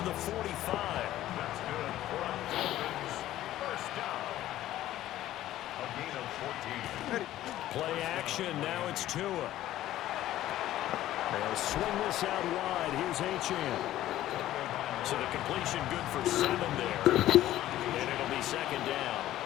the 45. That's good for a Dolphins first down. A gain of 14. Play action, now it's Tua. They'll swing this out wide. Here's Achane. So the completion good for 7 there. And it'll be second down.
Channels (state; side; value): quieter; right; 13.9 dB